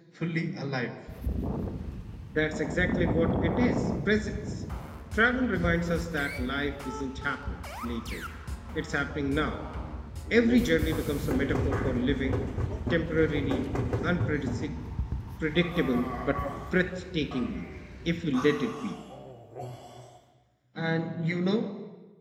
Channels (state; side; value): identical; both; correlation 1.00